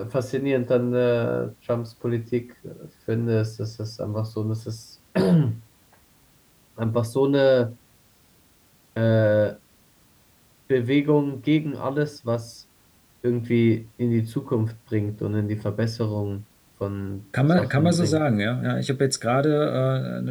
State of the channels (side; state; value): both; identical; correlation 1.00